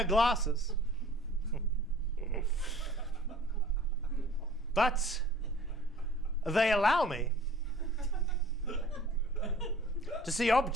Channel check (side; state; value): both; normal; correlation 0.48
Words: glasses. But they allow me to see